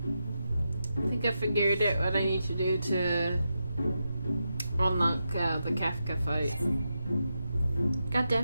I think I figured out what I need to do to unlock the Kafka fight. God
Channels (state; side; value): inverted; both; correlation -0.87